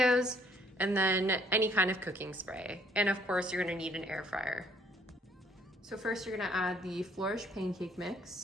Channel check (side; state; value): both; normal; correlation 0.63